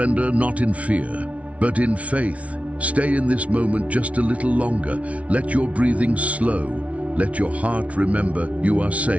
not in fear, but in faith. Stay in this moment just a little longer. Let your breathing slow. Let your heart remember you are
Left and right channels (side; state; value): left; late; 0.065 ms